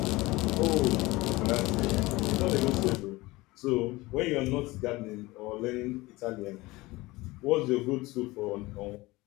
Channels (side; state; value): right; quieter; 20.9 dB